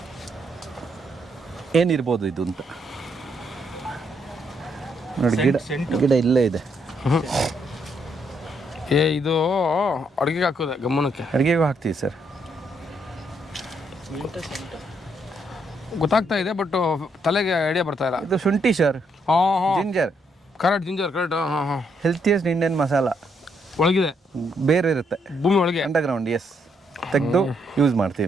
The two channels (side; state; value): both; normal; correlation 0.74